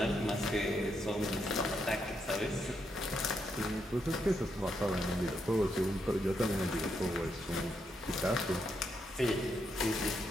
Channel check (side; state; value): both; normal; correlation 0.80